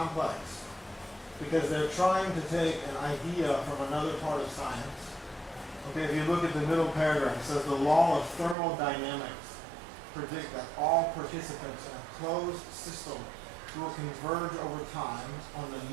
Because they're trying to take an idea from another part of science. Okay, if you look at the middle paragraph, it says the law of thermodynamics predict that all participants in a closed system will converge over time on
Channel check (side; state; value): left; drops out; at 8.6 s